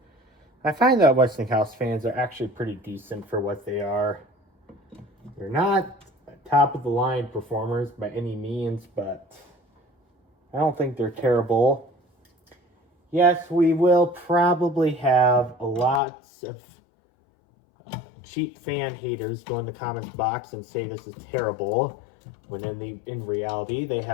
I find that Westinghouse fans are actually pretty decent for what they are. They're not top of the line performers by any means, but I don't think they're terrible. Yes, we will probably have lots of cheap fan haters go in the comments box and say this is terrible, when in reality they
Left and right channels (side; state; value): right; drops out; at 16.0 s